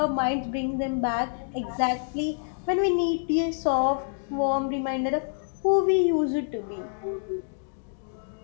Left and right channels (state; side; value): silent; right; digital silence